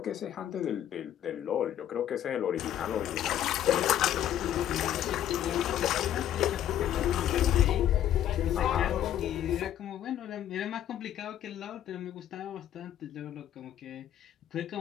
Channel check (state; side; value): quieter; right; 11.1 dB